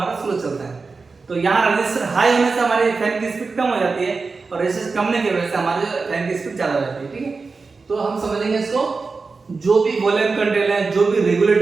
स्लो चलता है। तो यहाँ रजिस्टर हाई होने से हमारे फैन की स्पीड कम हो जाती है और रजिस्टर कम होने की वजह से हमारे फैन की स्पीड ज्यादा हो जाती है, ठीक है। तो हम समझेंगे इसको, जो भी वॉल्यूम कंट्रोल है, जो भी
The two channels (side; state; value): left; quieter; 4.3 dB